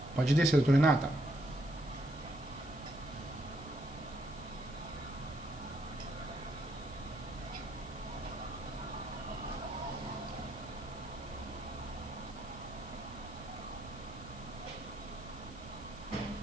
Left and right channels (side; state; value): left; noise; hiss, 21 dB below the sound